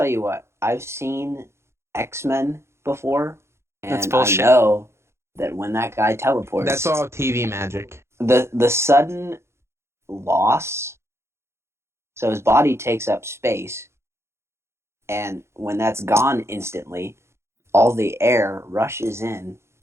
you what. I've seen X-Men before, and That's bullshit. I know that when that guy teleports... That's all TV magic. The sudden loss... So his body takes up space, and when that's gone instantly, all the air rushes in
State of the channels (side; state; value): left; late; 0.13 ms